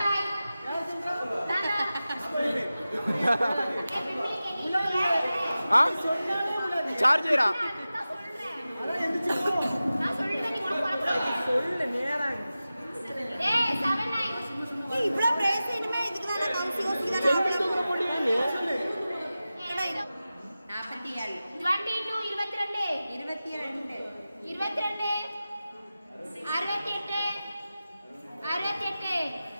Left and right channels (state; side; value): inverted; both; correlation -0.95